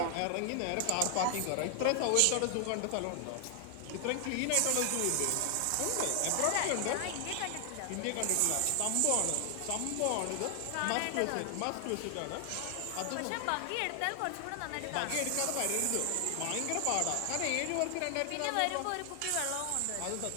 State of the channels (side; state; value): both; different; correlation 0.00